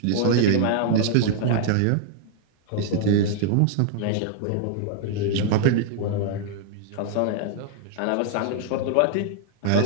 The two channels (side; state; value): both; different; correlation -0.01